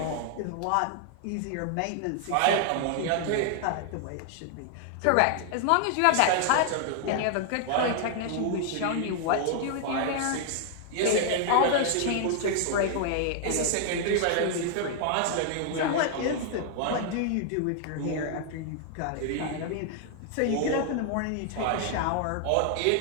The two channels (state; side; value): different; both; correlation 0.00